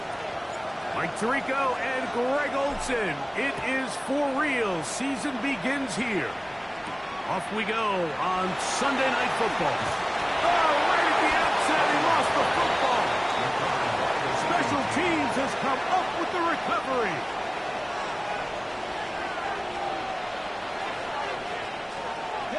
Mike Tirico and Greg Olson. It is for real. Season begins here. Off we go on Sunday Night Football. Oh, right at the outset, he lost the football. Special Teams has come up with the recovery.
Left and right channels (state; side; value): identical; both; correlation 1.00